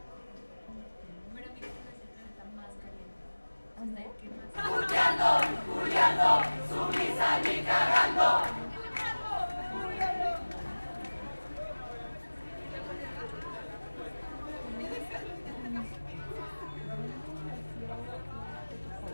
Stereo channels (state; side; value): inverted; both; correlation -1.00